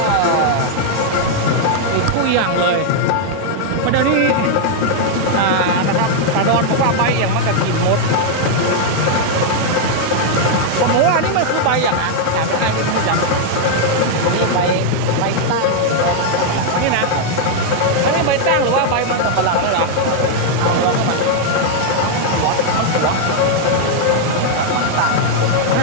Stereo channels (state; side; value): different; both; correlation 0.00